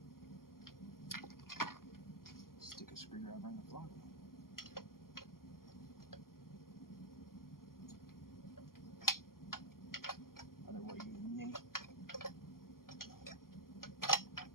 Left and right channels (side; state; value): right; late; 0.92 ms